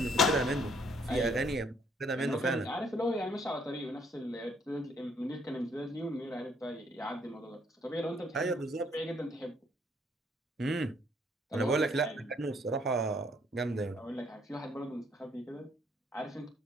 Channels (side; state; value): both; normal; correlation 0.66